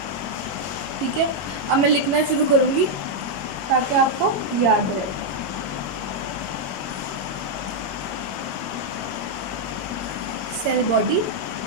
ठीक है, अब मैं लिखना शुरू करूँगी ताकि आपको याद रहे। Cell body,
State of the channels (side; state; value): left; late; 21 ms